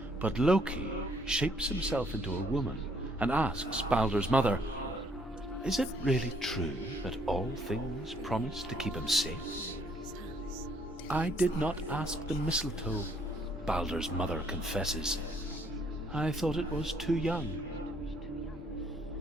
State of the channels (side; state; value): both; normal; correlation 0.67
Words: But Loki shapes himself into a woman and asks Baldur's mother, "Is it really true that all things promise to keep him safe?" "I did not ask the mistletoe," Baldur's mother confesses. "I thought it was too young."